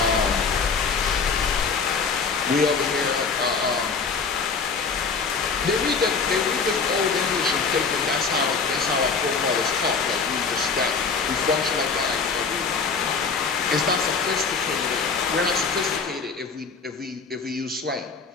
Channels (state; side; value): quieter; right; 5.0 dB